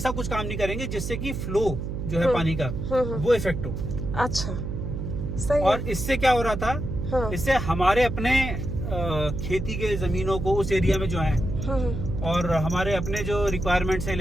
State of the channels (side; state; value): right; noise; hum, 4 dB below the sound